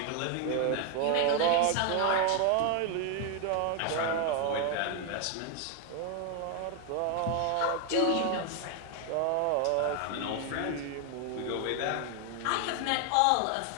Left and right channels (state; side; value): different; both; correlation 0.01